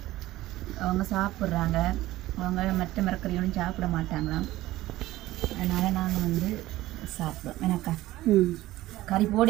அவங்க சாப்பிட்றாங்க. அவங்க மற்ற மரக்கறியோடும் சாப்பிட மாட்டாங்களாம். அதனால் நாங்கள் வந்து சாப்பிடுவோம். எனக்கா கறி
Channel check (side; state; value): left; quieter; 16.4 dB